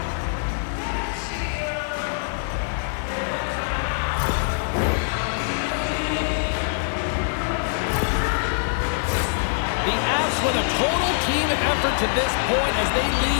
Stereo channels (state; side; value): silent; right; digital silence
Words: The Avs with a total team effort to this point as they